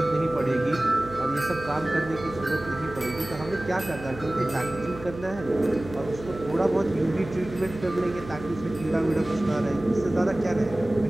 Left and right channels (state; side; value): noise; right; hum, 13 dB below the sound